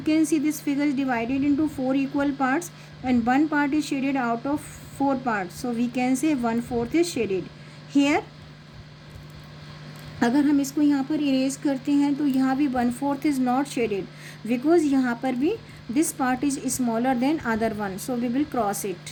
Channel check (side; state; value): both; identical; correlation 1.00